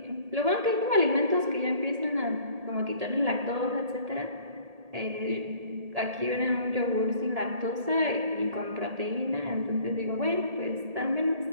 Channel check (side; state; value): left; late; 1.8 ms